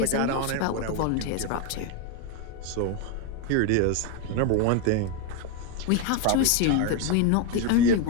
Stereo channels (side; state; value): both; different; correlation 0.02